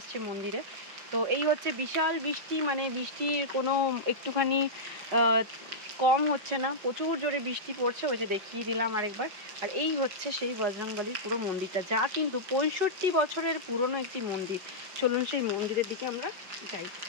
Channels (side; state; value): left; late; 5.4 ms